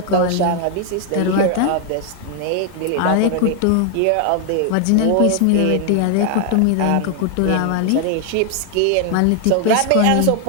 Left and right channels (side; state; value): both; different; correlation 0.00